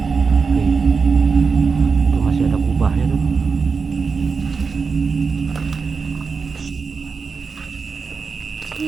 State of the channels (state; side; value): quieter; left; 5.1 dB